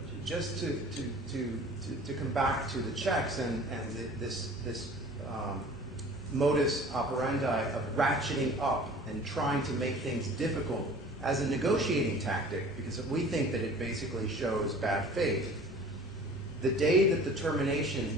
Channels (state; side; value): normal; both; correlation 0.45